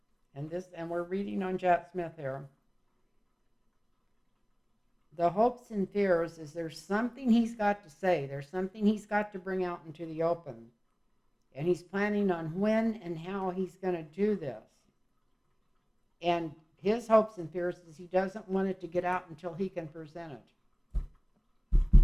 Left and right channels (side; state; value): both; identical; correlation 1.00